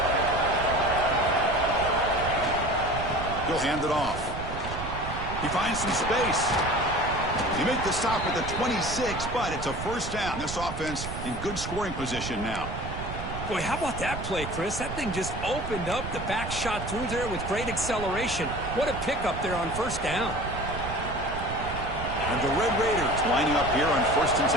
He'll hand it off. He finds some space. He made the stop at the 26, but it's a first down. This offense in good scoring position now. Boy, how about that play, Chris? That thing just opened up. The back shot through there with great acceleration. What a pickup there on first down. And the Red Raiders lining up here on first and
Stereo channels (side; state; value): right; noise; rumble, 8 dB below the sound